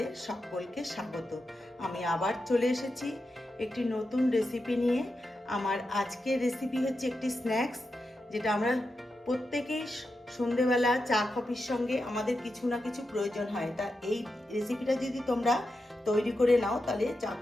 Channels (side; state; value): both; normal; correlation 0.88